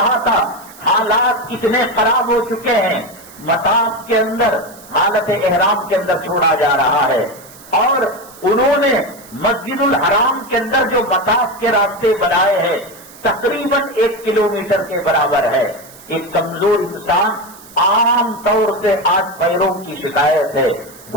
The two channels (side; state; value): right; noise; hiss, 21 dB below the sound